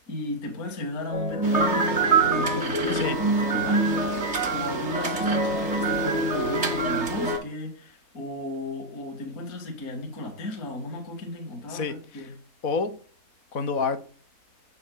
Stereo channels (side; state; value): right; late; 3.3 ms